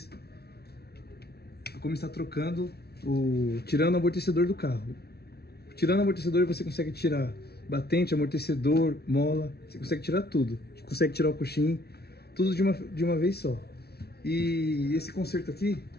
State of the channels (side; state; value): right; late; 0.46 ms